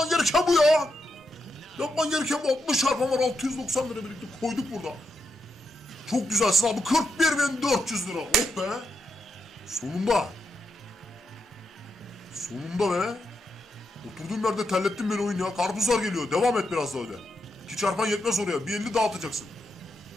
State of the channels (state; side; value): normal; both; correlation 0.83